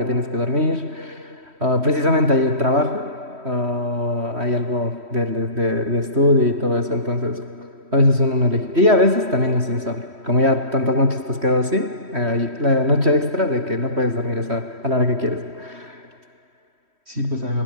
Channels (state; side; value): late; left; 3.1 ms